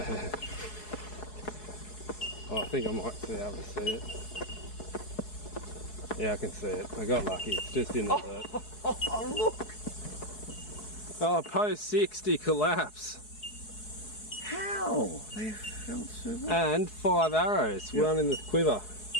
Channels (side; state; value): right; late; 4.7 ms